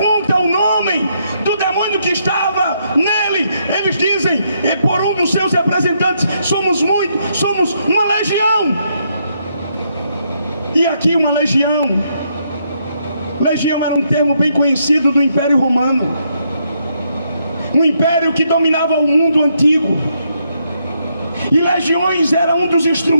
o nome do demônio que estava nele, eles dizem, por um dos seus representantes, somos uma legião. E aqui uma legião. Legião era um termo bem conhecido do Império Romano, um império que dominava o mundo antigo. E legiões era um dos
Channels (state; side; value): inverted; both; correlation -0.76